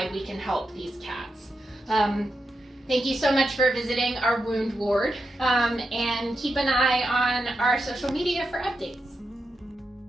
we can help these cats. Thank you so much for visiting our wound ward, and keep an eye on our social media for updates.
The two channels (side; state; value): both; normal; correlation 0.87